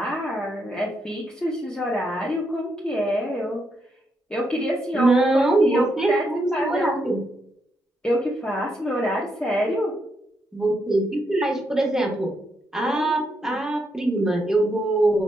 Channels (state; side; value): normal; both; correlation 0.79